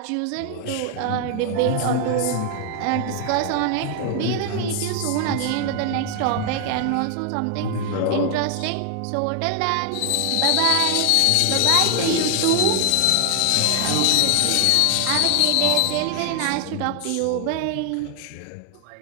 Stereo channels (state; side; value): different; both; correlation 0.00